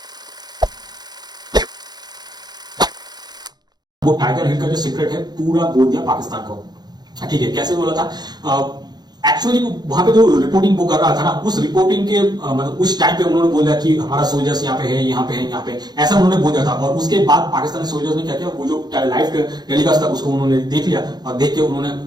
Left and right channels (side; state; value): left; late; 0.20 ms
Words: वो टाइगर हिल का जो सीक्रेट है पूरा बोल दिया पाकिस्तान को। ठीक है, कैसे बोला था? एक्चुअली वहां पे जो रिपोर्टिंग वो कर रहा था ना, उस रिपोर्टिंग के मतलब उस टाइम पे उन्होंने बोला कि हमारा सोल्जर्स यहाँ पे है, यहाँ पे है, यहाँ पे, ऐसा उन्होंने बोला था। और उसके बाद पाकिस्तानी सोल्जर्स ने क्या किया, वो जो लाइव टेलीकास्ट था उसको उन्होंने देख लिया, और देख के उन्होंने